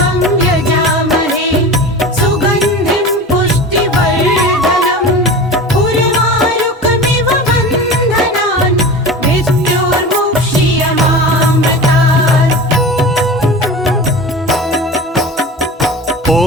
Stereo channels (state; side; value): normal; both; correlation 0.33